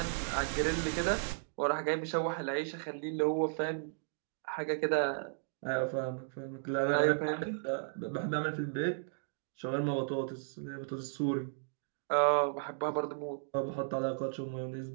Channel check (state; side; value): silent; left; digital silence